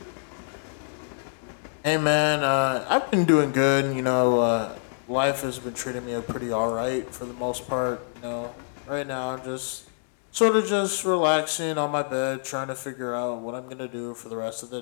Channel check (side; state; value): right; silent; digital silence